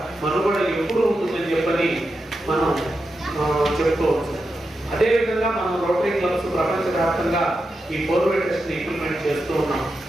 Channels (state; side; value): normal; both; correlation 0.88